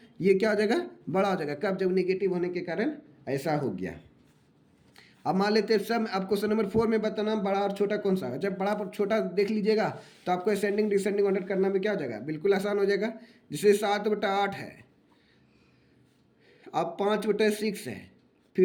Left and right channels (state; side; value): identical; both; correlation 1.00